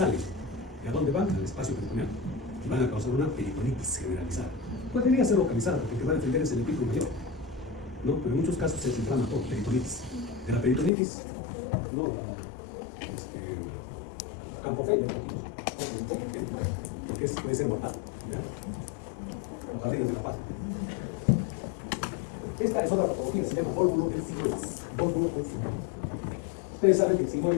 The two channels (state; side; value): drops out; right; at 10.9 s